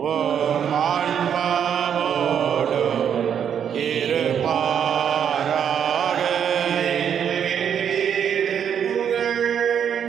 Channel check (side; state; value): left; quieter; 8.4 dB